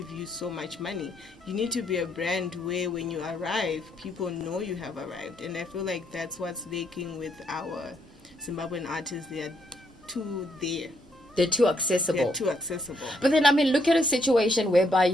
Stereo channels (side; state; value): both; normal; correlation 0.73